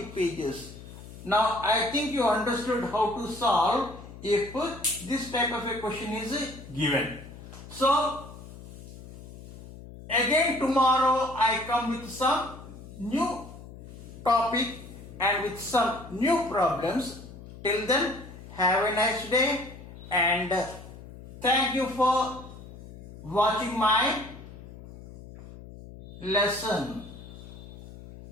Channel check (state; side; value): noise; left; hum, 16 dB below the sound